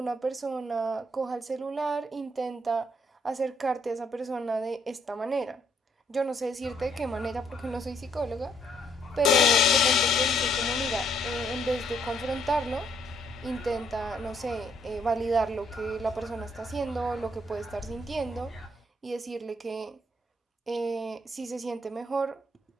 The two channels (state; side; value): normal; both; correlation 0.70